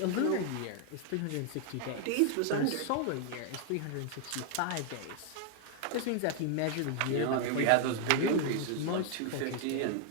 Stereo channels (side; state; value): both; different; correlation 0.00